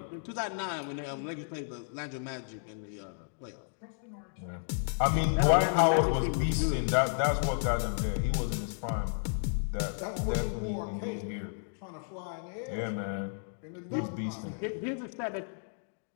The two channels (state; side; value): silent; right; digital silence